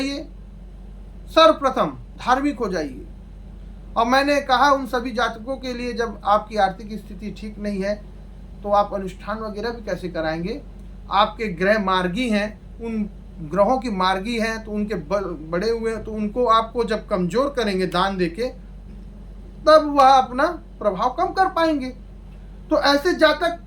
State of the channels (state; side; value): identical; both; correlation 1.00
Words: सर्वप्रथम धार्मिक हो जाइए। और मैंने कहा उन सभी जातकों के लिए, जब आपकी आर्थिक स्थिति ठीक नहीं है तो आप अनुष्ठान वगैरह भी कैसे कराएंगे। आपके ग्रह मार्गी हैं, उन ग्रहों की मार्गी हैं, तो उनके बड़े हुए हैं, तो उनको आपको जब कमजोर करेंगे दान देके, तब वह अपना प्रभाव कम कर पाएंगे। तो ऐसे जातक